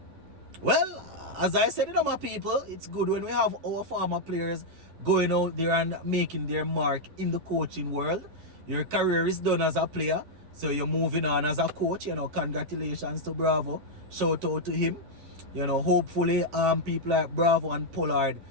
Well, as I said, my people, it's good when we have our former players going out there and making their mark in the coaching world. Your career is done as a player, so you're moving on as a coach. You know, congratulations to Bravo. Shout out to him. You know, hopefully people like Bravo and Pollard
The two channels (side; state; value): left; late; 11 ms